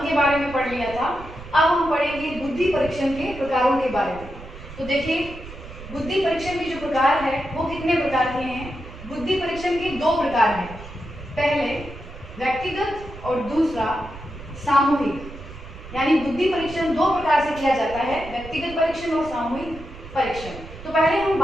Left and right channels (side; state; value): right; noise; rumble, 14 dB below the sound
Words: के बारे में पढ़ लिया था। अब हम पढ़ेंगे बुद्धि परीक्षण के प्रकारों के बारे में। तो देखिए, बुद्धि परीक्षण के जो प्रकार है वो कितने प्रकार के हैं। बुद्धि परीक्षण के दो प्रकार हैं, पहले व्यक्तिगत और दूसरा सामूहिक। यानी बुद्धि परीक्षण दो प्रकार से किया जाता है, व्यक्तिगत परीक्षण और सामूहिक परीक्षण। तो पहले हम